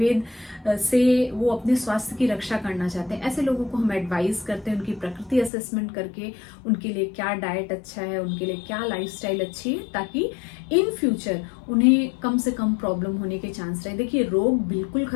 से वो अपने स्वास्थ्य की रक्षा करना चाहते हैं, ऐसे लोगों को हम एडवाइस करते हैं उनकी प्रकृति असेसमेंट करके उनके लिए क्या डाइट अच्छा है, उनके लिए क्या लाइफस्टाइल अच्छी है, ताकि इन फ्यूचर उन्हें कम से कम प्रॉब्लम होने के चांस रहे। देखिए, रोग बिल्कुल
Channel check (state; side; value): drops out; right; at 5.5 s